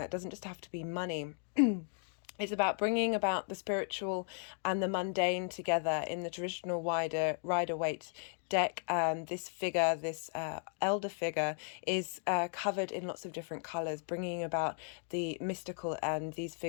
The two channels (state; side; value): silent; right; 54 dB below the other